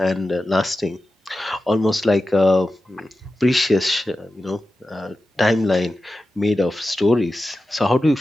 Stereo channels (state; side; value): normal; both; correlation 0.93